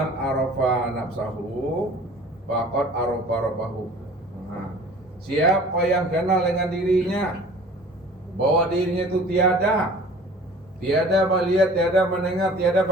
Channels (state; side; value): normal; both; correlation 0.46